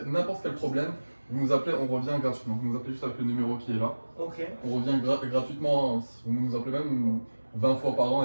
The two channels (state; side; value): inverted; both; correlation -1.00